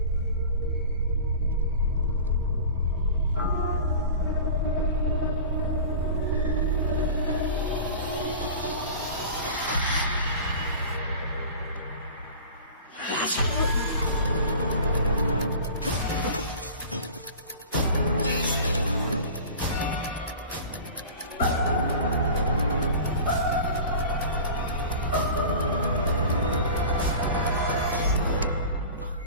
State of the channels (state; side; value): inverted; both; correlation -0.37